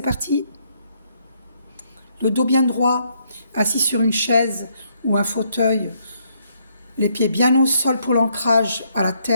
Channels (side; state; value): both; inverted; correlation -0.72